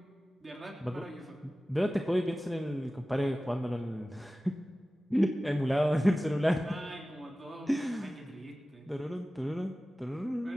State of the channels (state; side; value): normal; both; correlation 0.96